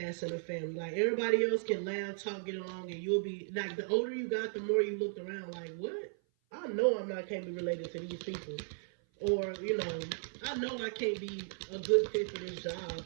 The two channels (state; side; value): silent; left; 54 dB below the other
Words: in the family. Like everybody else can laugh, talk, get along, and you'll be like, the older you got, the more you looked around like, what? I know can't be related to these people. Or, I know I can't be a good fit for this